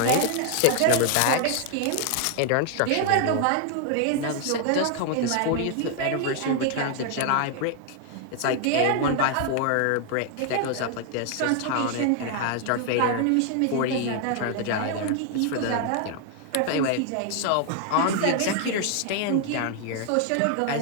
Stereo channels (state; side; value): different; both; correlation 0.00